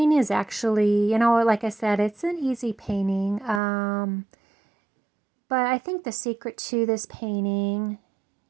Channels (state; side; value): drops out; left; at 3.6 s